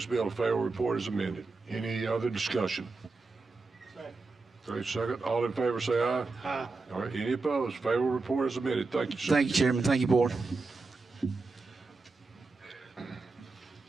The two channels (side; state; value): left; quieter; 3.8 dB